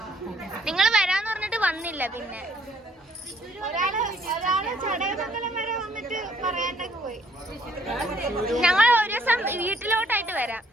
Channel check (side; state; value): both; normal; correlation 0.65